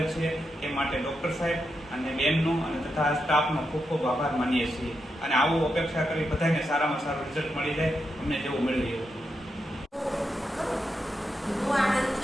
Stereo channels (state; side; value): normal; both; correlation 0.85